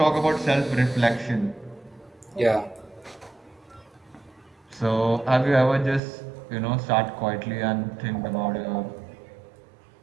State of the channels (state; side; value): drops out; left; at 6.0 s